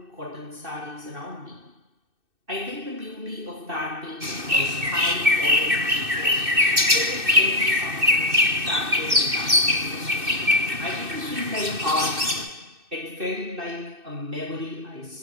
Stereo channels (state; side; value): late; left; 2.6 ms